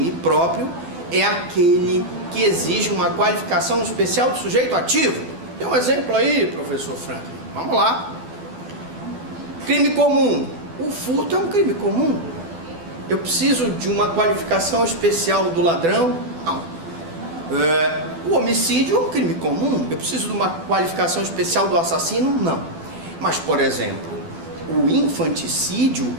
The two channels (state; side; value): late; left; 12 ms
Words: próprio é aquele que exige uma qualificação especial do sujeito ativo. Tem um exemplo aí, professor Franklin? Vamos lá. Crime comum. O furto é um crime comum. Eu preciso de uma qualificação especial do ladrão? Não. O homicídio é um crime comum. Eu preciso de uma qualificação especial do assassino? Não. Mas, por exemplo, o infanticídio